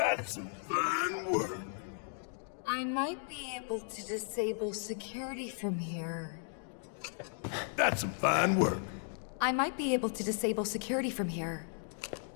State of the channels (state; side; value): silent; right; 54 dB below the other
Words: some fine work. I might be able to disable security from here. That's some fine work. I might be able to disable security from here.